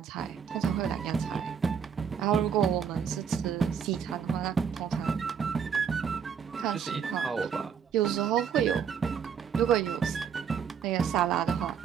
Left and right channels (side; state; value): left; quieter; 7.2 dB